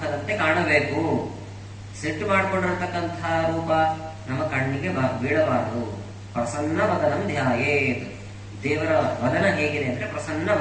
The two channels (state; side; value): identical; both; correlation 1.00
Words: ಕಾಣಬೇಕು. ಸೆಟ್ಟು ಮಾಡಿಕೊಂಡಿರತಕ್ಕಂತಹ ರೂಪ ನಮ್ಮ ಕಣ್ಣಿಗೆ ಬೀಳಬಾರದು. ಪ್ರಸನ್ನ ವದನಂ ಧ್ಯಾಯೇತ್. ದೇವರ ವದನ ಹೇಗಿದೆ ಅಂದ್ರೆ ಪ್ರಸನ್ನ